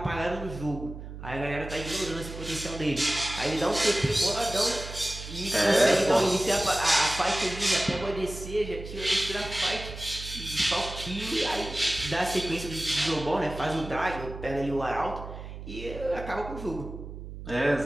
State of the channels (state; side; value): noise; right; hum, 11 dB below the sound